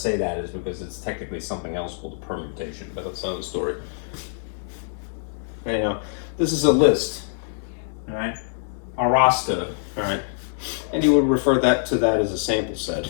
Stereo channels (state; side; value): silent; right; digital silence